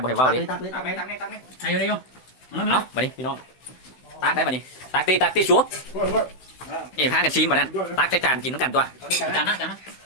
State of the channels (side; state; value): right; late; 16 ms